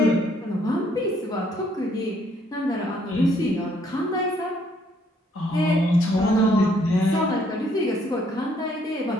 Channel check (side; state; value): both; normal; correlation 0.67